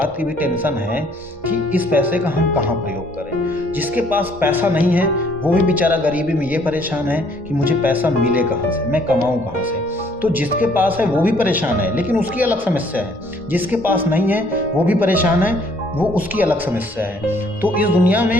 की भी टेंशन है कि इस पैसे का हम कहाँ प्रयोग करें। जिसके पास पैसा नहीं है वो भी बेचारा गरीबी में ये परेशान है कि मुझे पैसा मिले कहाँ से, मैं कमाऊँ कहाँ से। तो जिसके पास है वो भी परेशान है, लेकिन उसकी अलग समस्या है। जिसके पास नहीं है वो भी परेशान है, वो उसकी अलग समस्या है। तो इस दुनिया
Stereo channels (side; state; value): both; normal; correlation 0.62